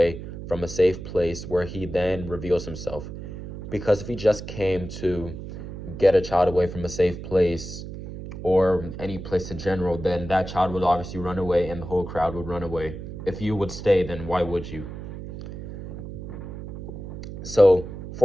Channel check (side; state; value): right; noise; hum, 10 dB below the sound